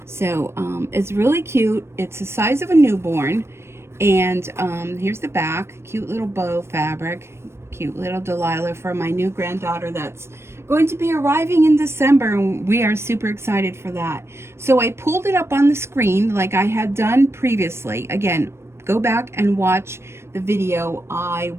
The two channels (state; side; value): late; left; 0.12 ms